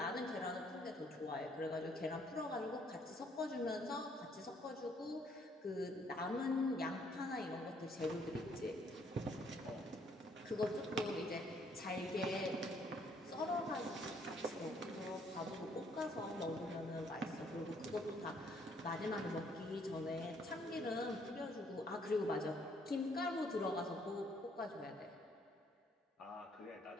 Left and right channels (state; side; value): normal; both; correlation 0.66